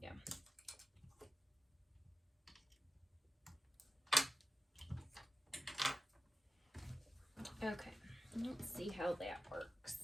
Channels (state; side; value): normal; both; correlation 0.94